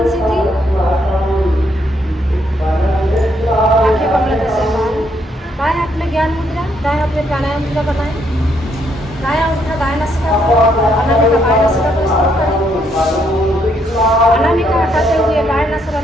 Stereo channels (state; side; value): normal; both; correlation 0.73